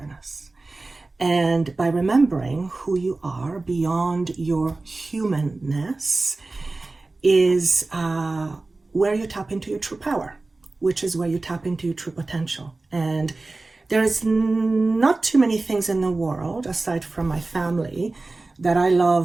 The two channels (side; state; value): left; quieter; 3.3 dB